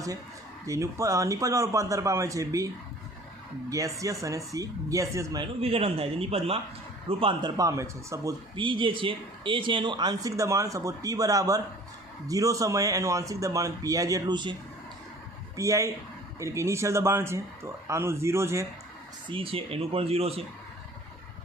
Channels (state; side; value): normal; both; correlation 0.48